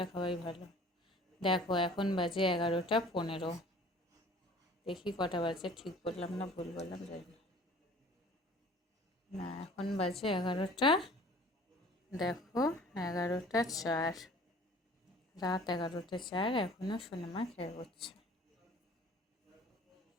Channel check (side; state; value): both; normal; correlation 0.49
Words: খাওয়াই ভালো। দেখো এখন বাজে 11টা 15। দেখি কটা বাজে, ঠিক বললাম না ভুল বললাম জানি না। না এখন বাজে 11টা, দেখো 11টা 4, রাত 11টা 4, এখনো সোনামা খেয়ে করছে।